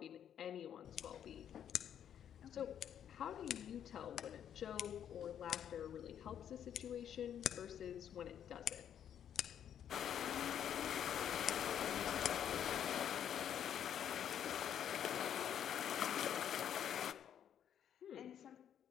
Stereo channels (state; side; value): quieter; right; 9.4 dB